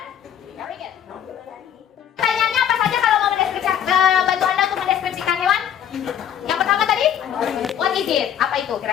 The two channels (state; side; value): quieter; right; 9.5 dB